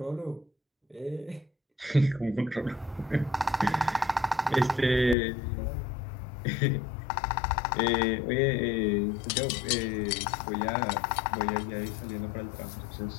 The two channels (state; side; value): drops out; right; at 5.2 s